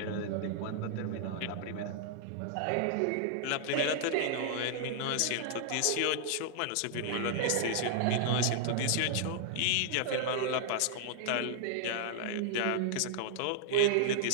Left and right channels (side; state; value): both; different; correlation -0.01